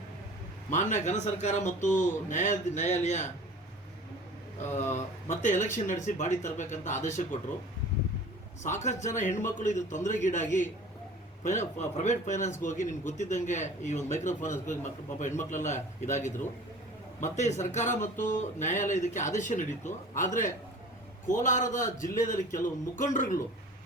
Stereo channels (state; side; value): normal; both; correlation 0.42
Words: ಮಾನ್ಯ ಘನ ಸರ್ಕಾರ ಮತ್ತು ನ್ಯಾಯಾಲಯ ಮತ್ತೆ ಎಲೆಕ್ಷನ್ ನಡೆಸಿ ಬಾಡಿ ತರಬೇಕಂತ ಆದೇಶ ಕೊಟ್ಟರು. ಸಾಕಷ್ಟು ಜನ ಹೆಣ್ಮಕ್ಳು ಇದು ತೊಂದರೆಗೀಡಾಗಿ ಪ್ರೈವೇಟ್ ಫೈನಾನ್ಸ್ಗೆ ಹೋಗಿ ನಿಮ್ಗೆ ಗೊತ್ತಿದ್ದಂಗೆ ಈ ಒಂದು ಮೈಕ್ರೋ ಫೈನಾನ್ಸ್ಗೆ ಹೋಗಿ ಪಾಪ ಹೆಣ್ಮಕ್ಳೆಲ್ಲ ಇದಾಗಿದ್ರು. ಮತ್ತೆ ಸರ್ಕಾರ ಮತ್ತು ನ್ಯಾಯಾಲಯ ಇದಕ್ಕೆ ಆದೇಶ ನೀಡಿತ್ತು. ಆದರೆ ಕೋಲಾರದ ಜಿಲ್ಲೆಯಲ್ಲಿ ಕೆಲವು ಮುಖಂಡರುಗಳು